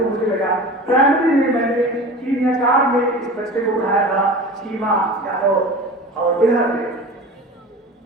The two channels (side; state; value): both; normal; correlation 0.35